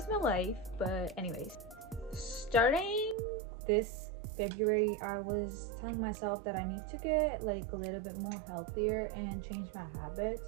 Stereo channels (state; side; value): drops out; left; at 3.2 s